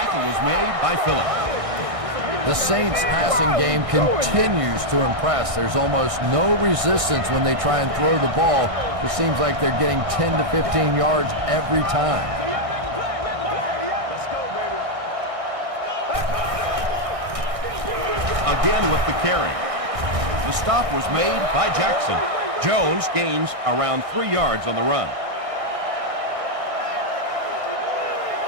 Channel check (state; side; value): late; left; 1.6 ms